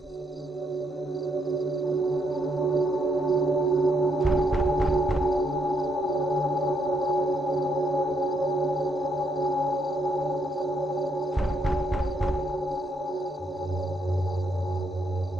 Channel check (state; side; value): normal; both; correlation 0.75